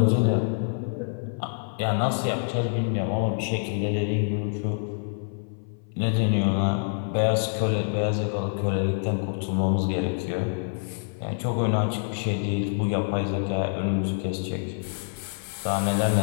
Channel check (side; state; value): right; silent; 57 dB below the other